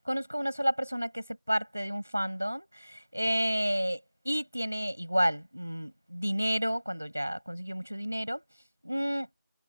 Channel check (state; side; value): inverted; both; correlation -0.98